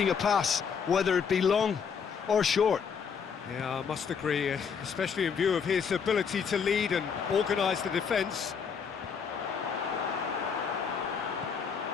a pass, whether it be long or short. Yeah, I must agree, especially in view of his ability to lead and organise the defence.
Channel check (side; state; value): right; quieter; 6.5 dB